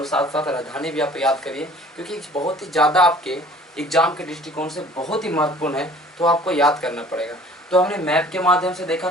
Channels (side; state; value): both; normal; correlation 0.50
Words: साथ साथ राजधानी भी आप याद करिए, क्योंकि बहुत ही ज़्यादा आपके एग्जाम के दृष्टिकोण से बहुत ही महत्वपूर्ण है, तो आपको याद करना पड़ेगा। तो हमने मैप के माध्यम से देखा